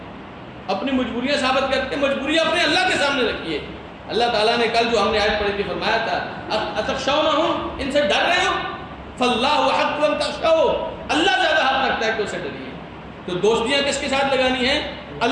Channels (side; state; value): both; identical; correlation 1.00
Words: اپنی مجبوریاں ثابت کرتے ہیں۔ مجبوریاں اپنے اللہ کے سامنے رکھیے۔ اللہ تعالیٰ نے کل جو ہم نے آیت پڑھی تھی فرمایا تھا اتخشونہم، ان سے ڈر رہے ہو، فاللہ حق ان تخشوا، اللہ زیادہ حق رکھتا ہے کہ اسے ڈریے۔ تو دوستیاں کس کے ساتھ لگانی ہیں؟